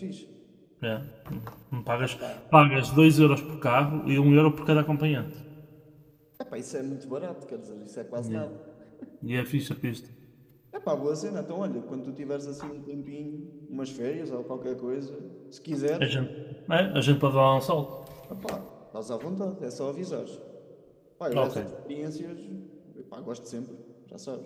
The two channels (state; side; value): identical; both; correlation 1.00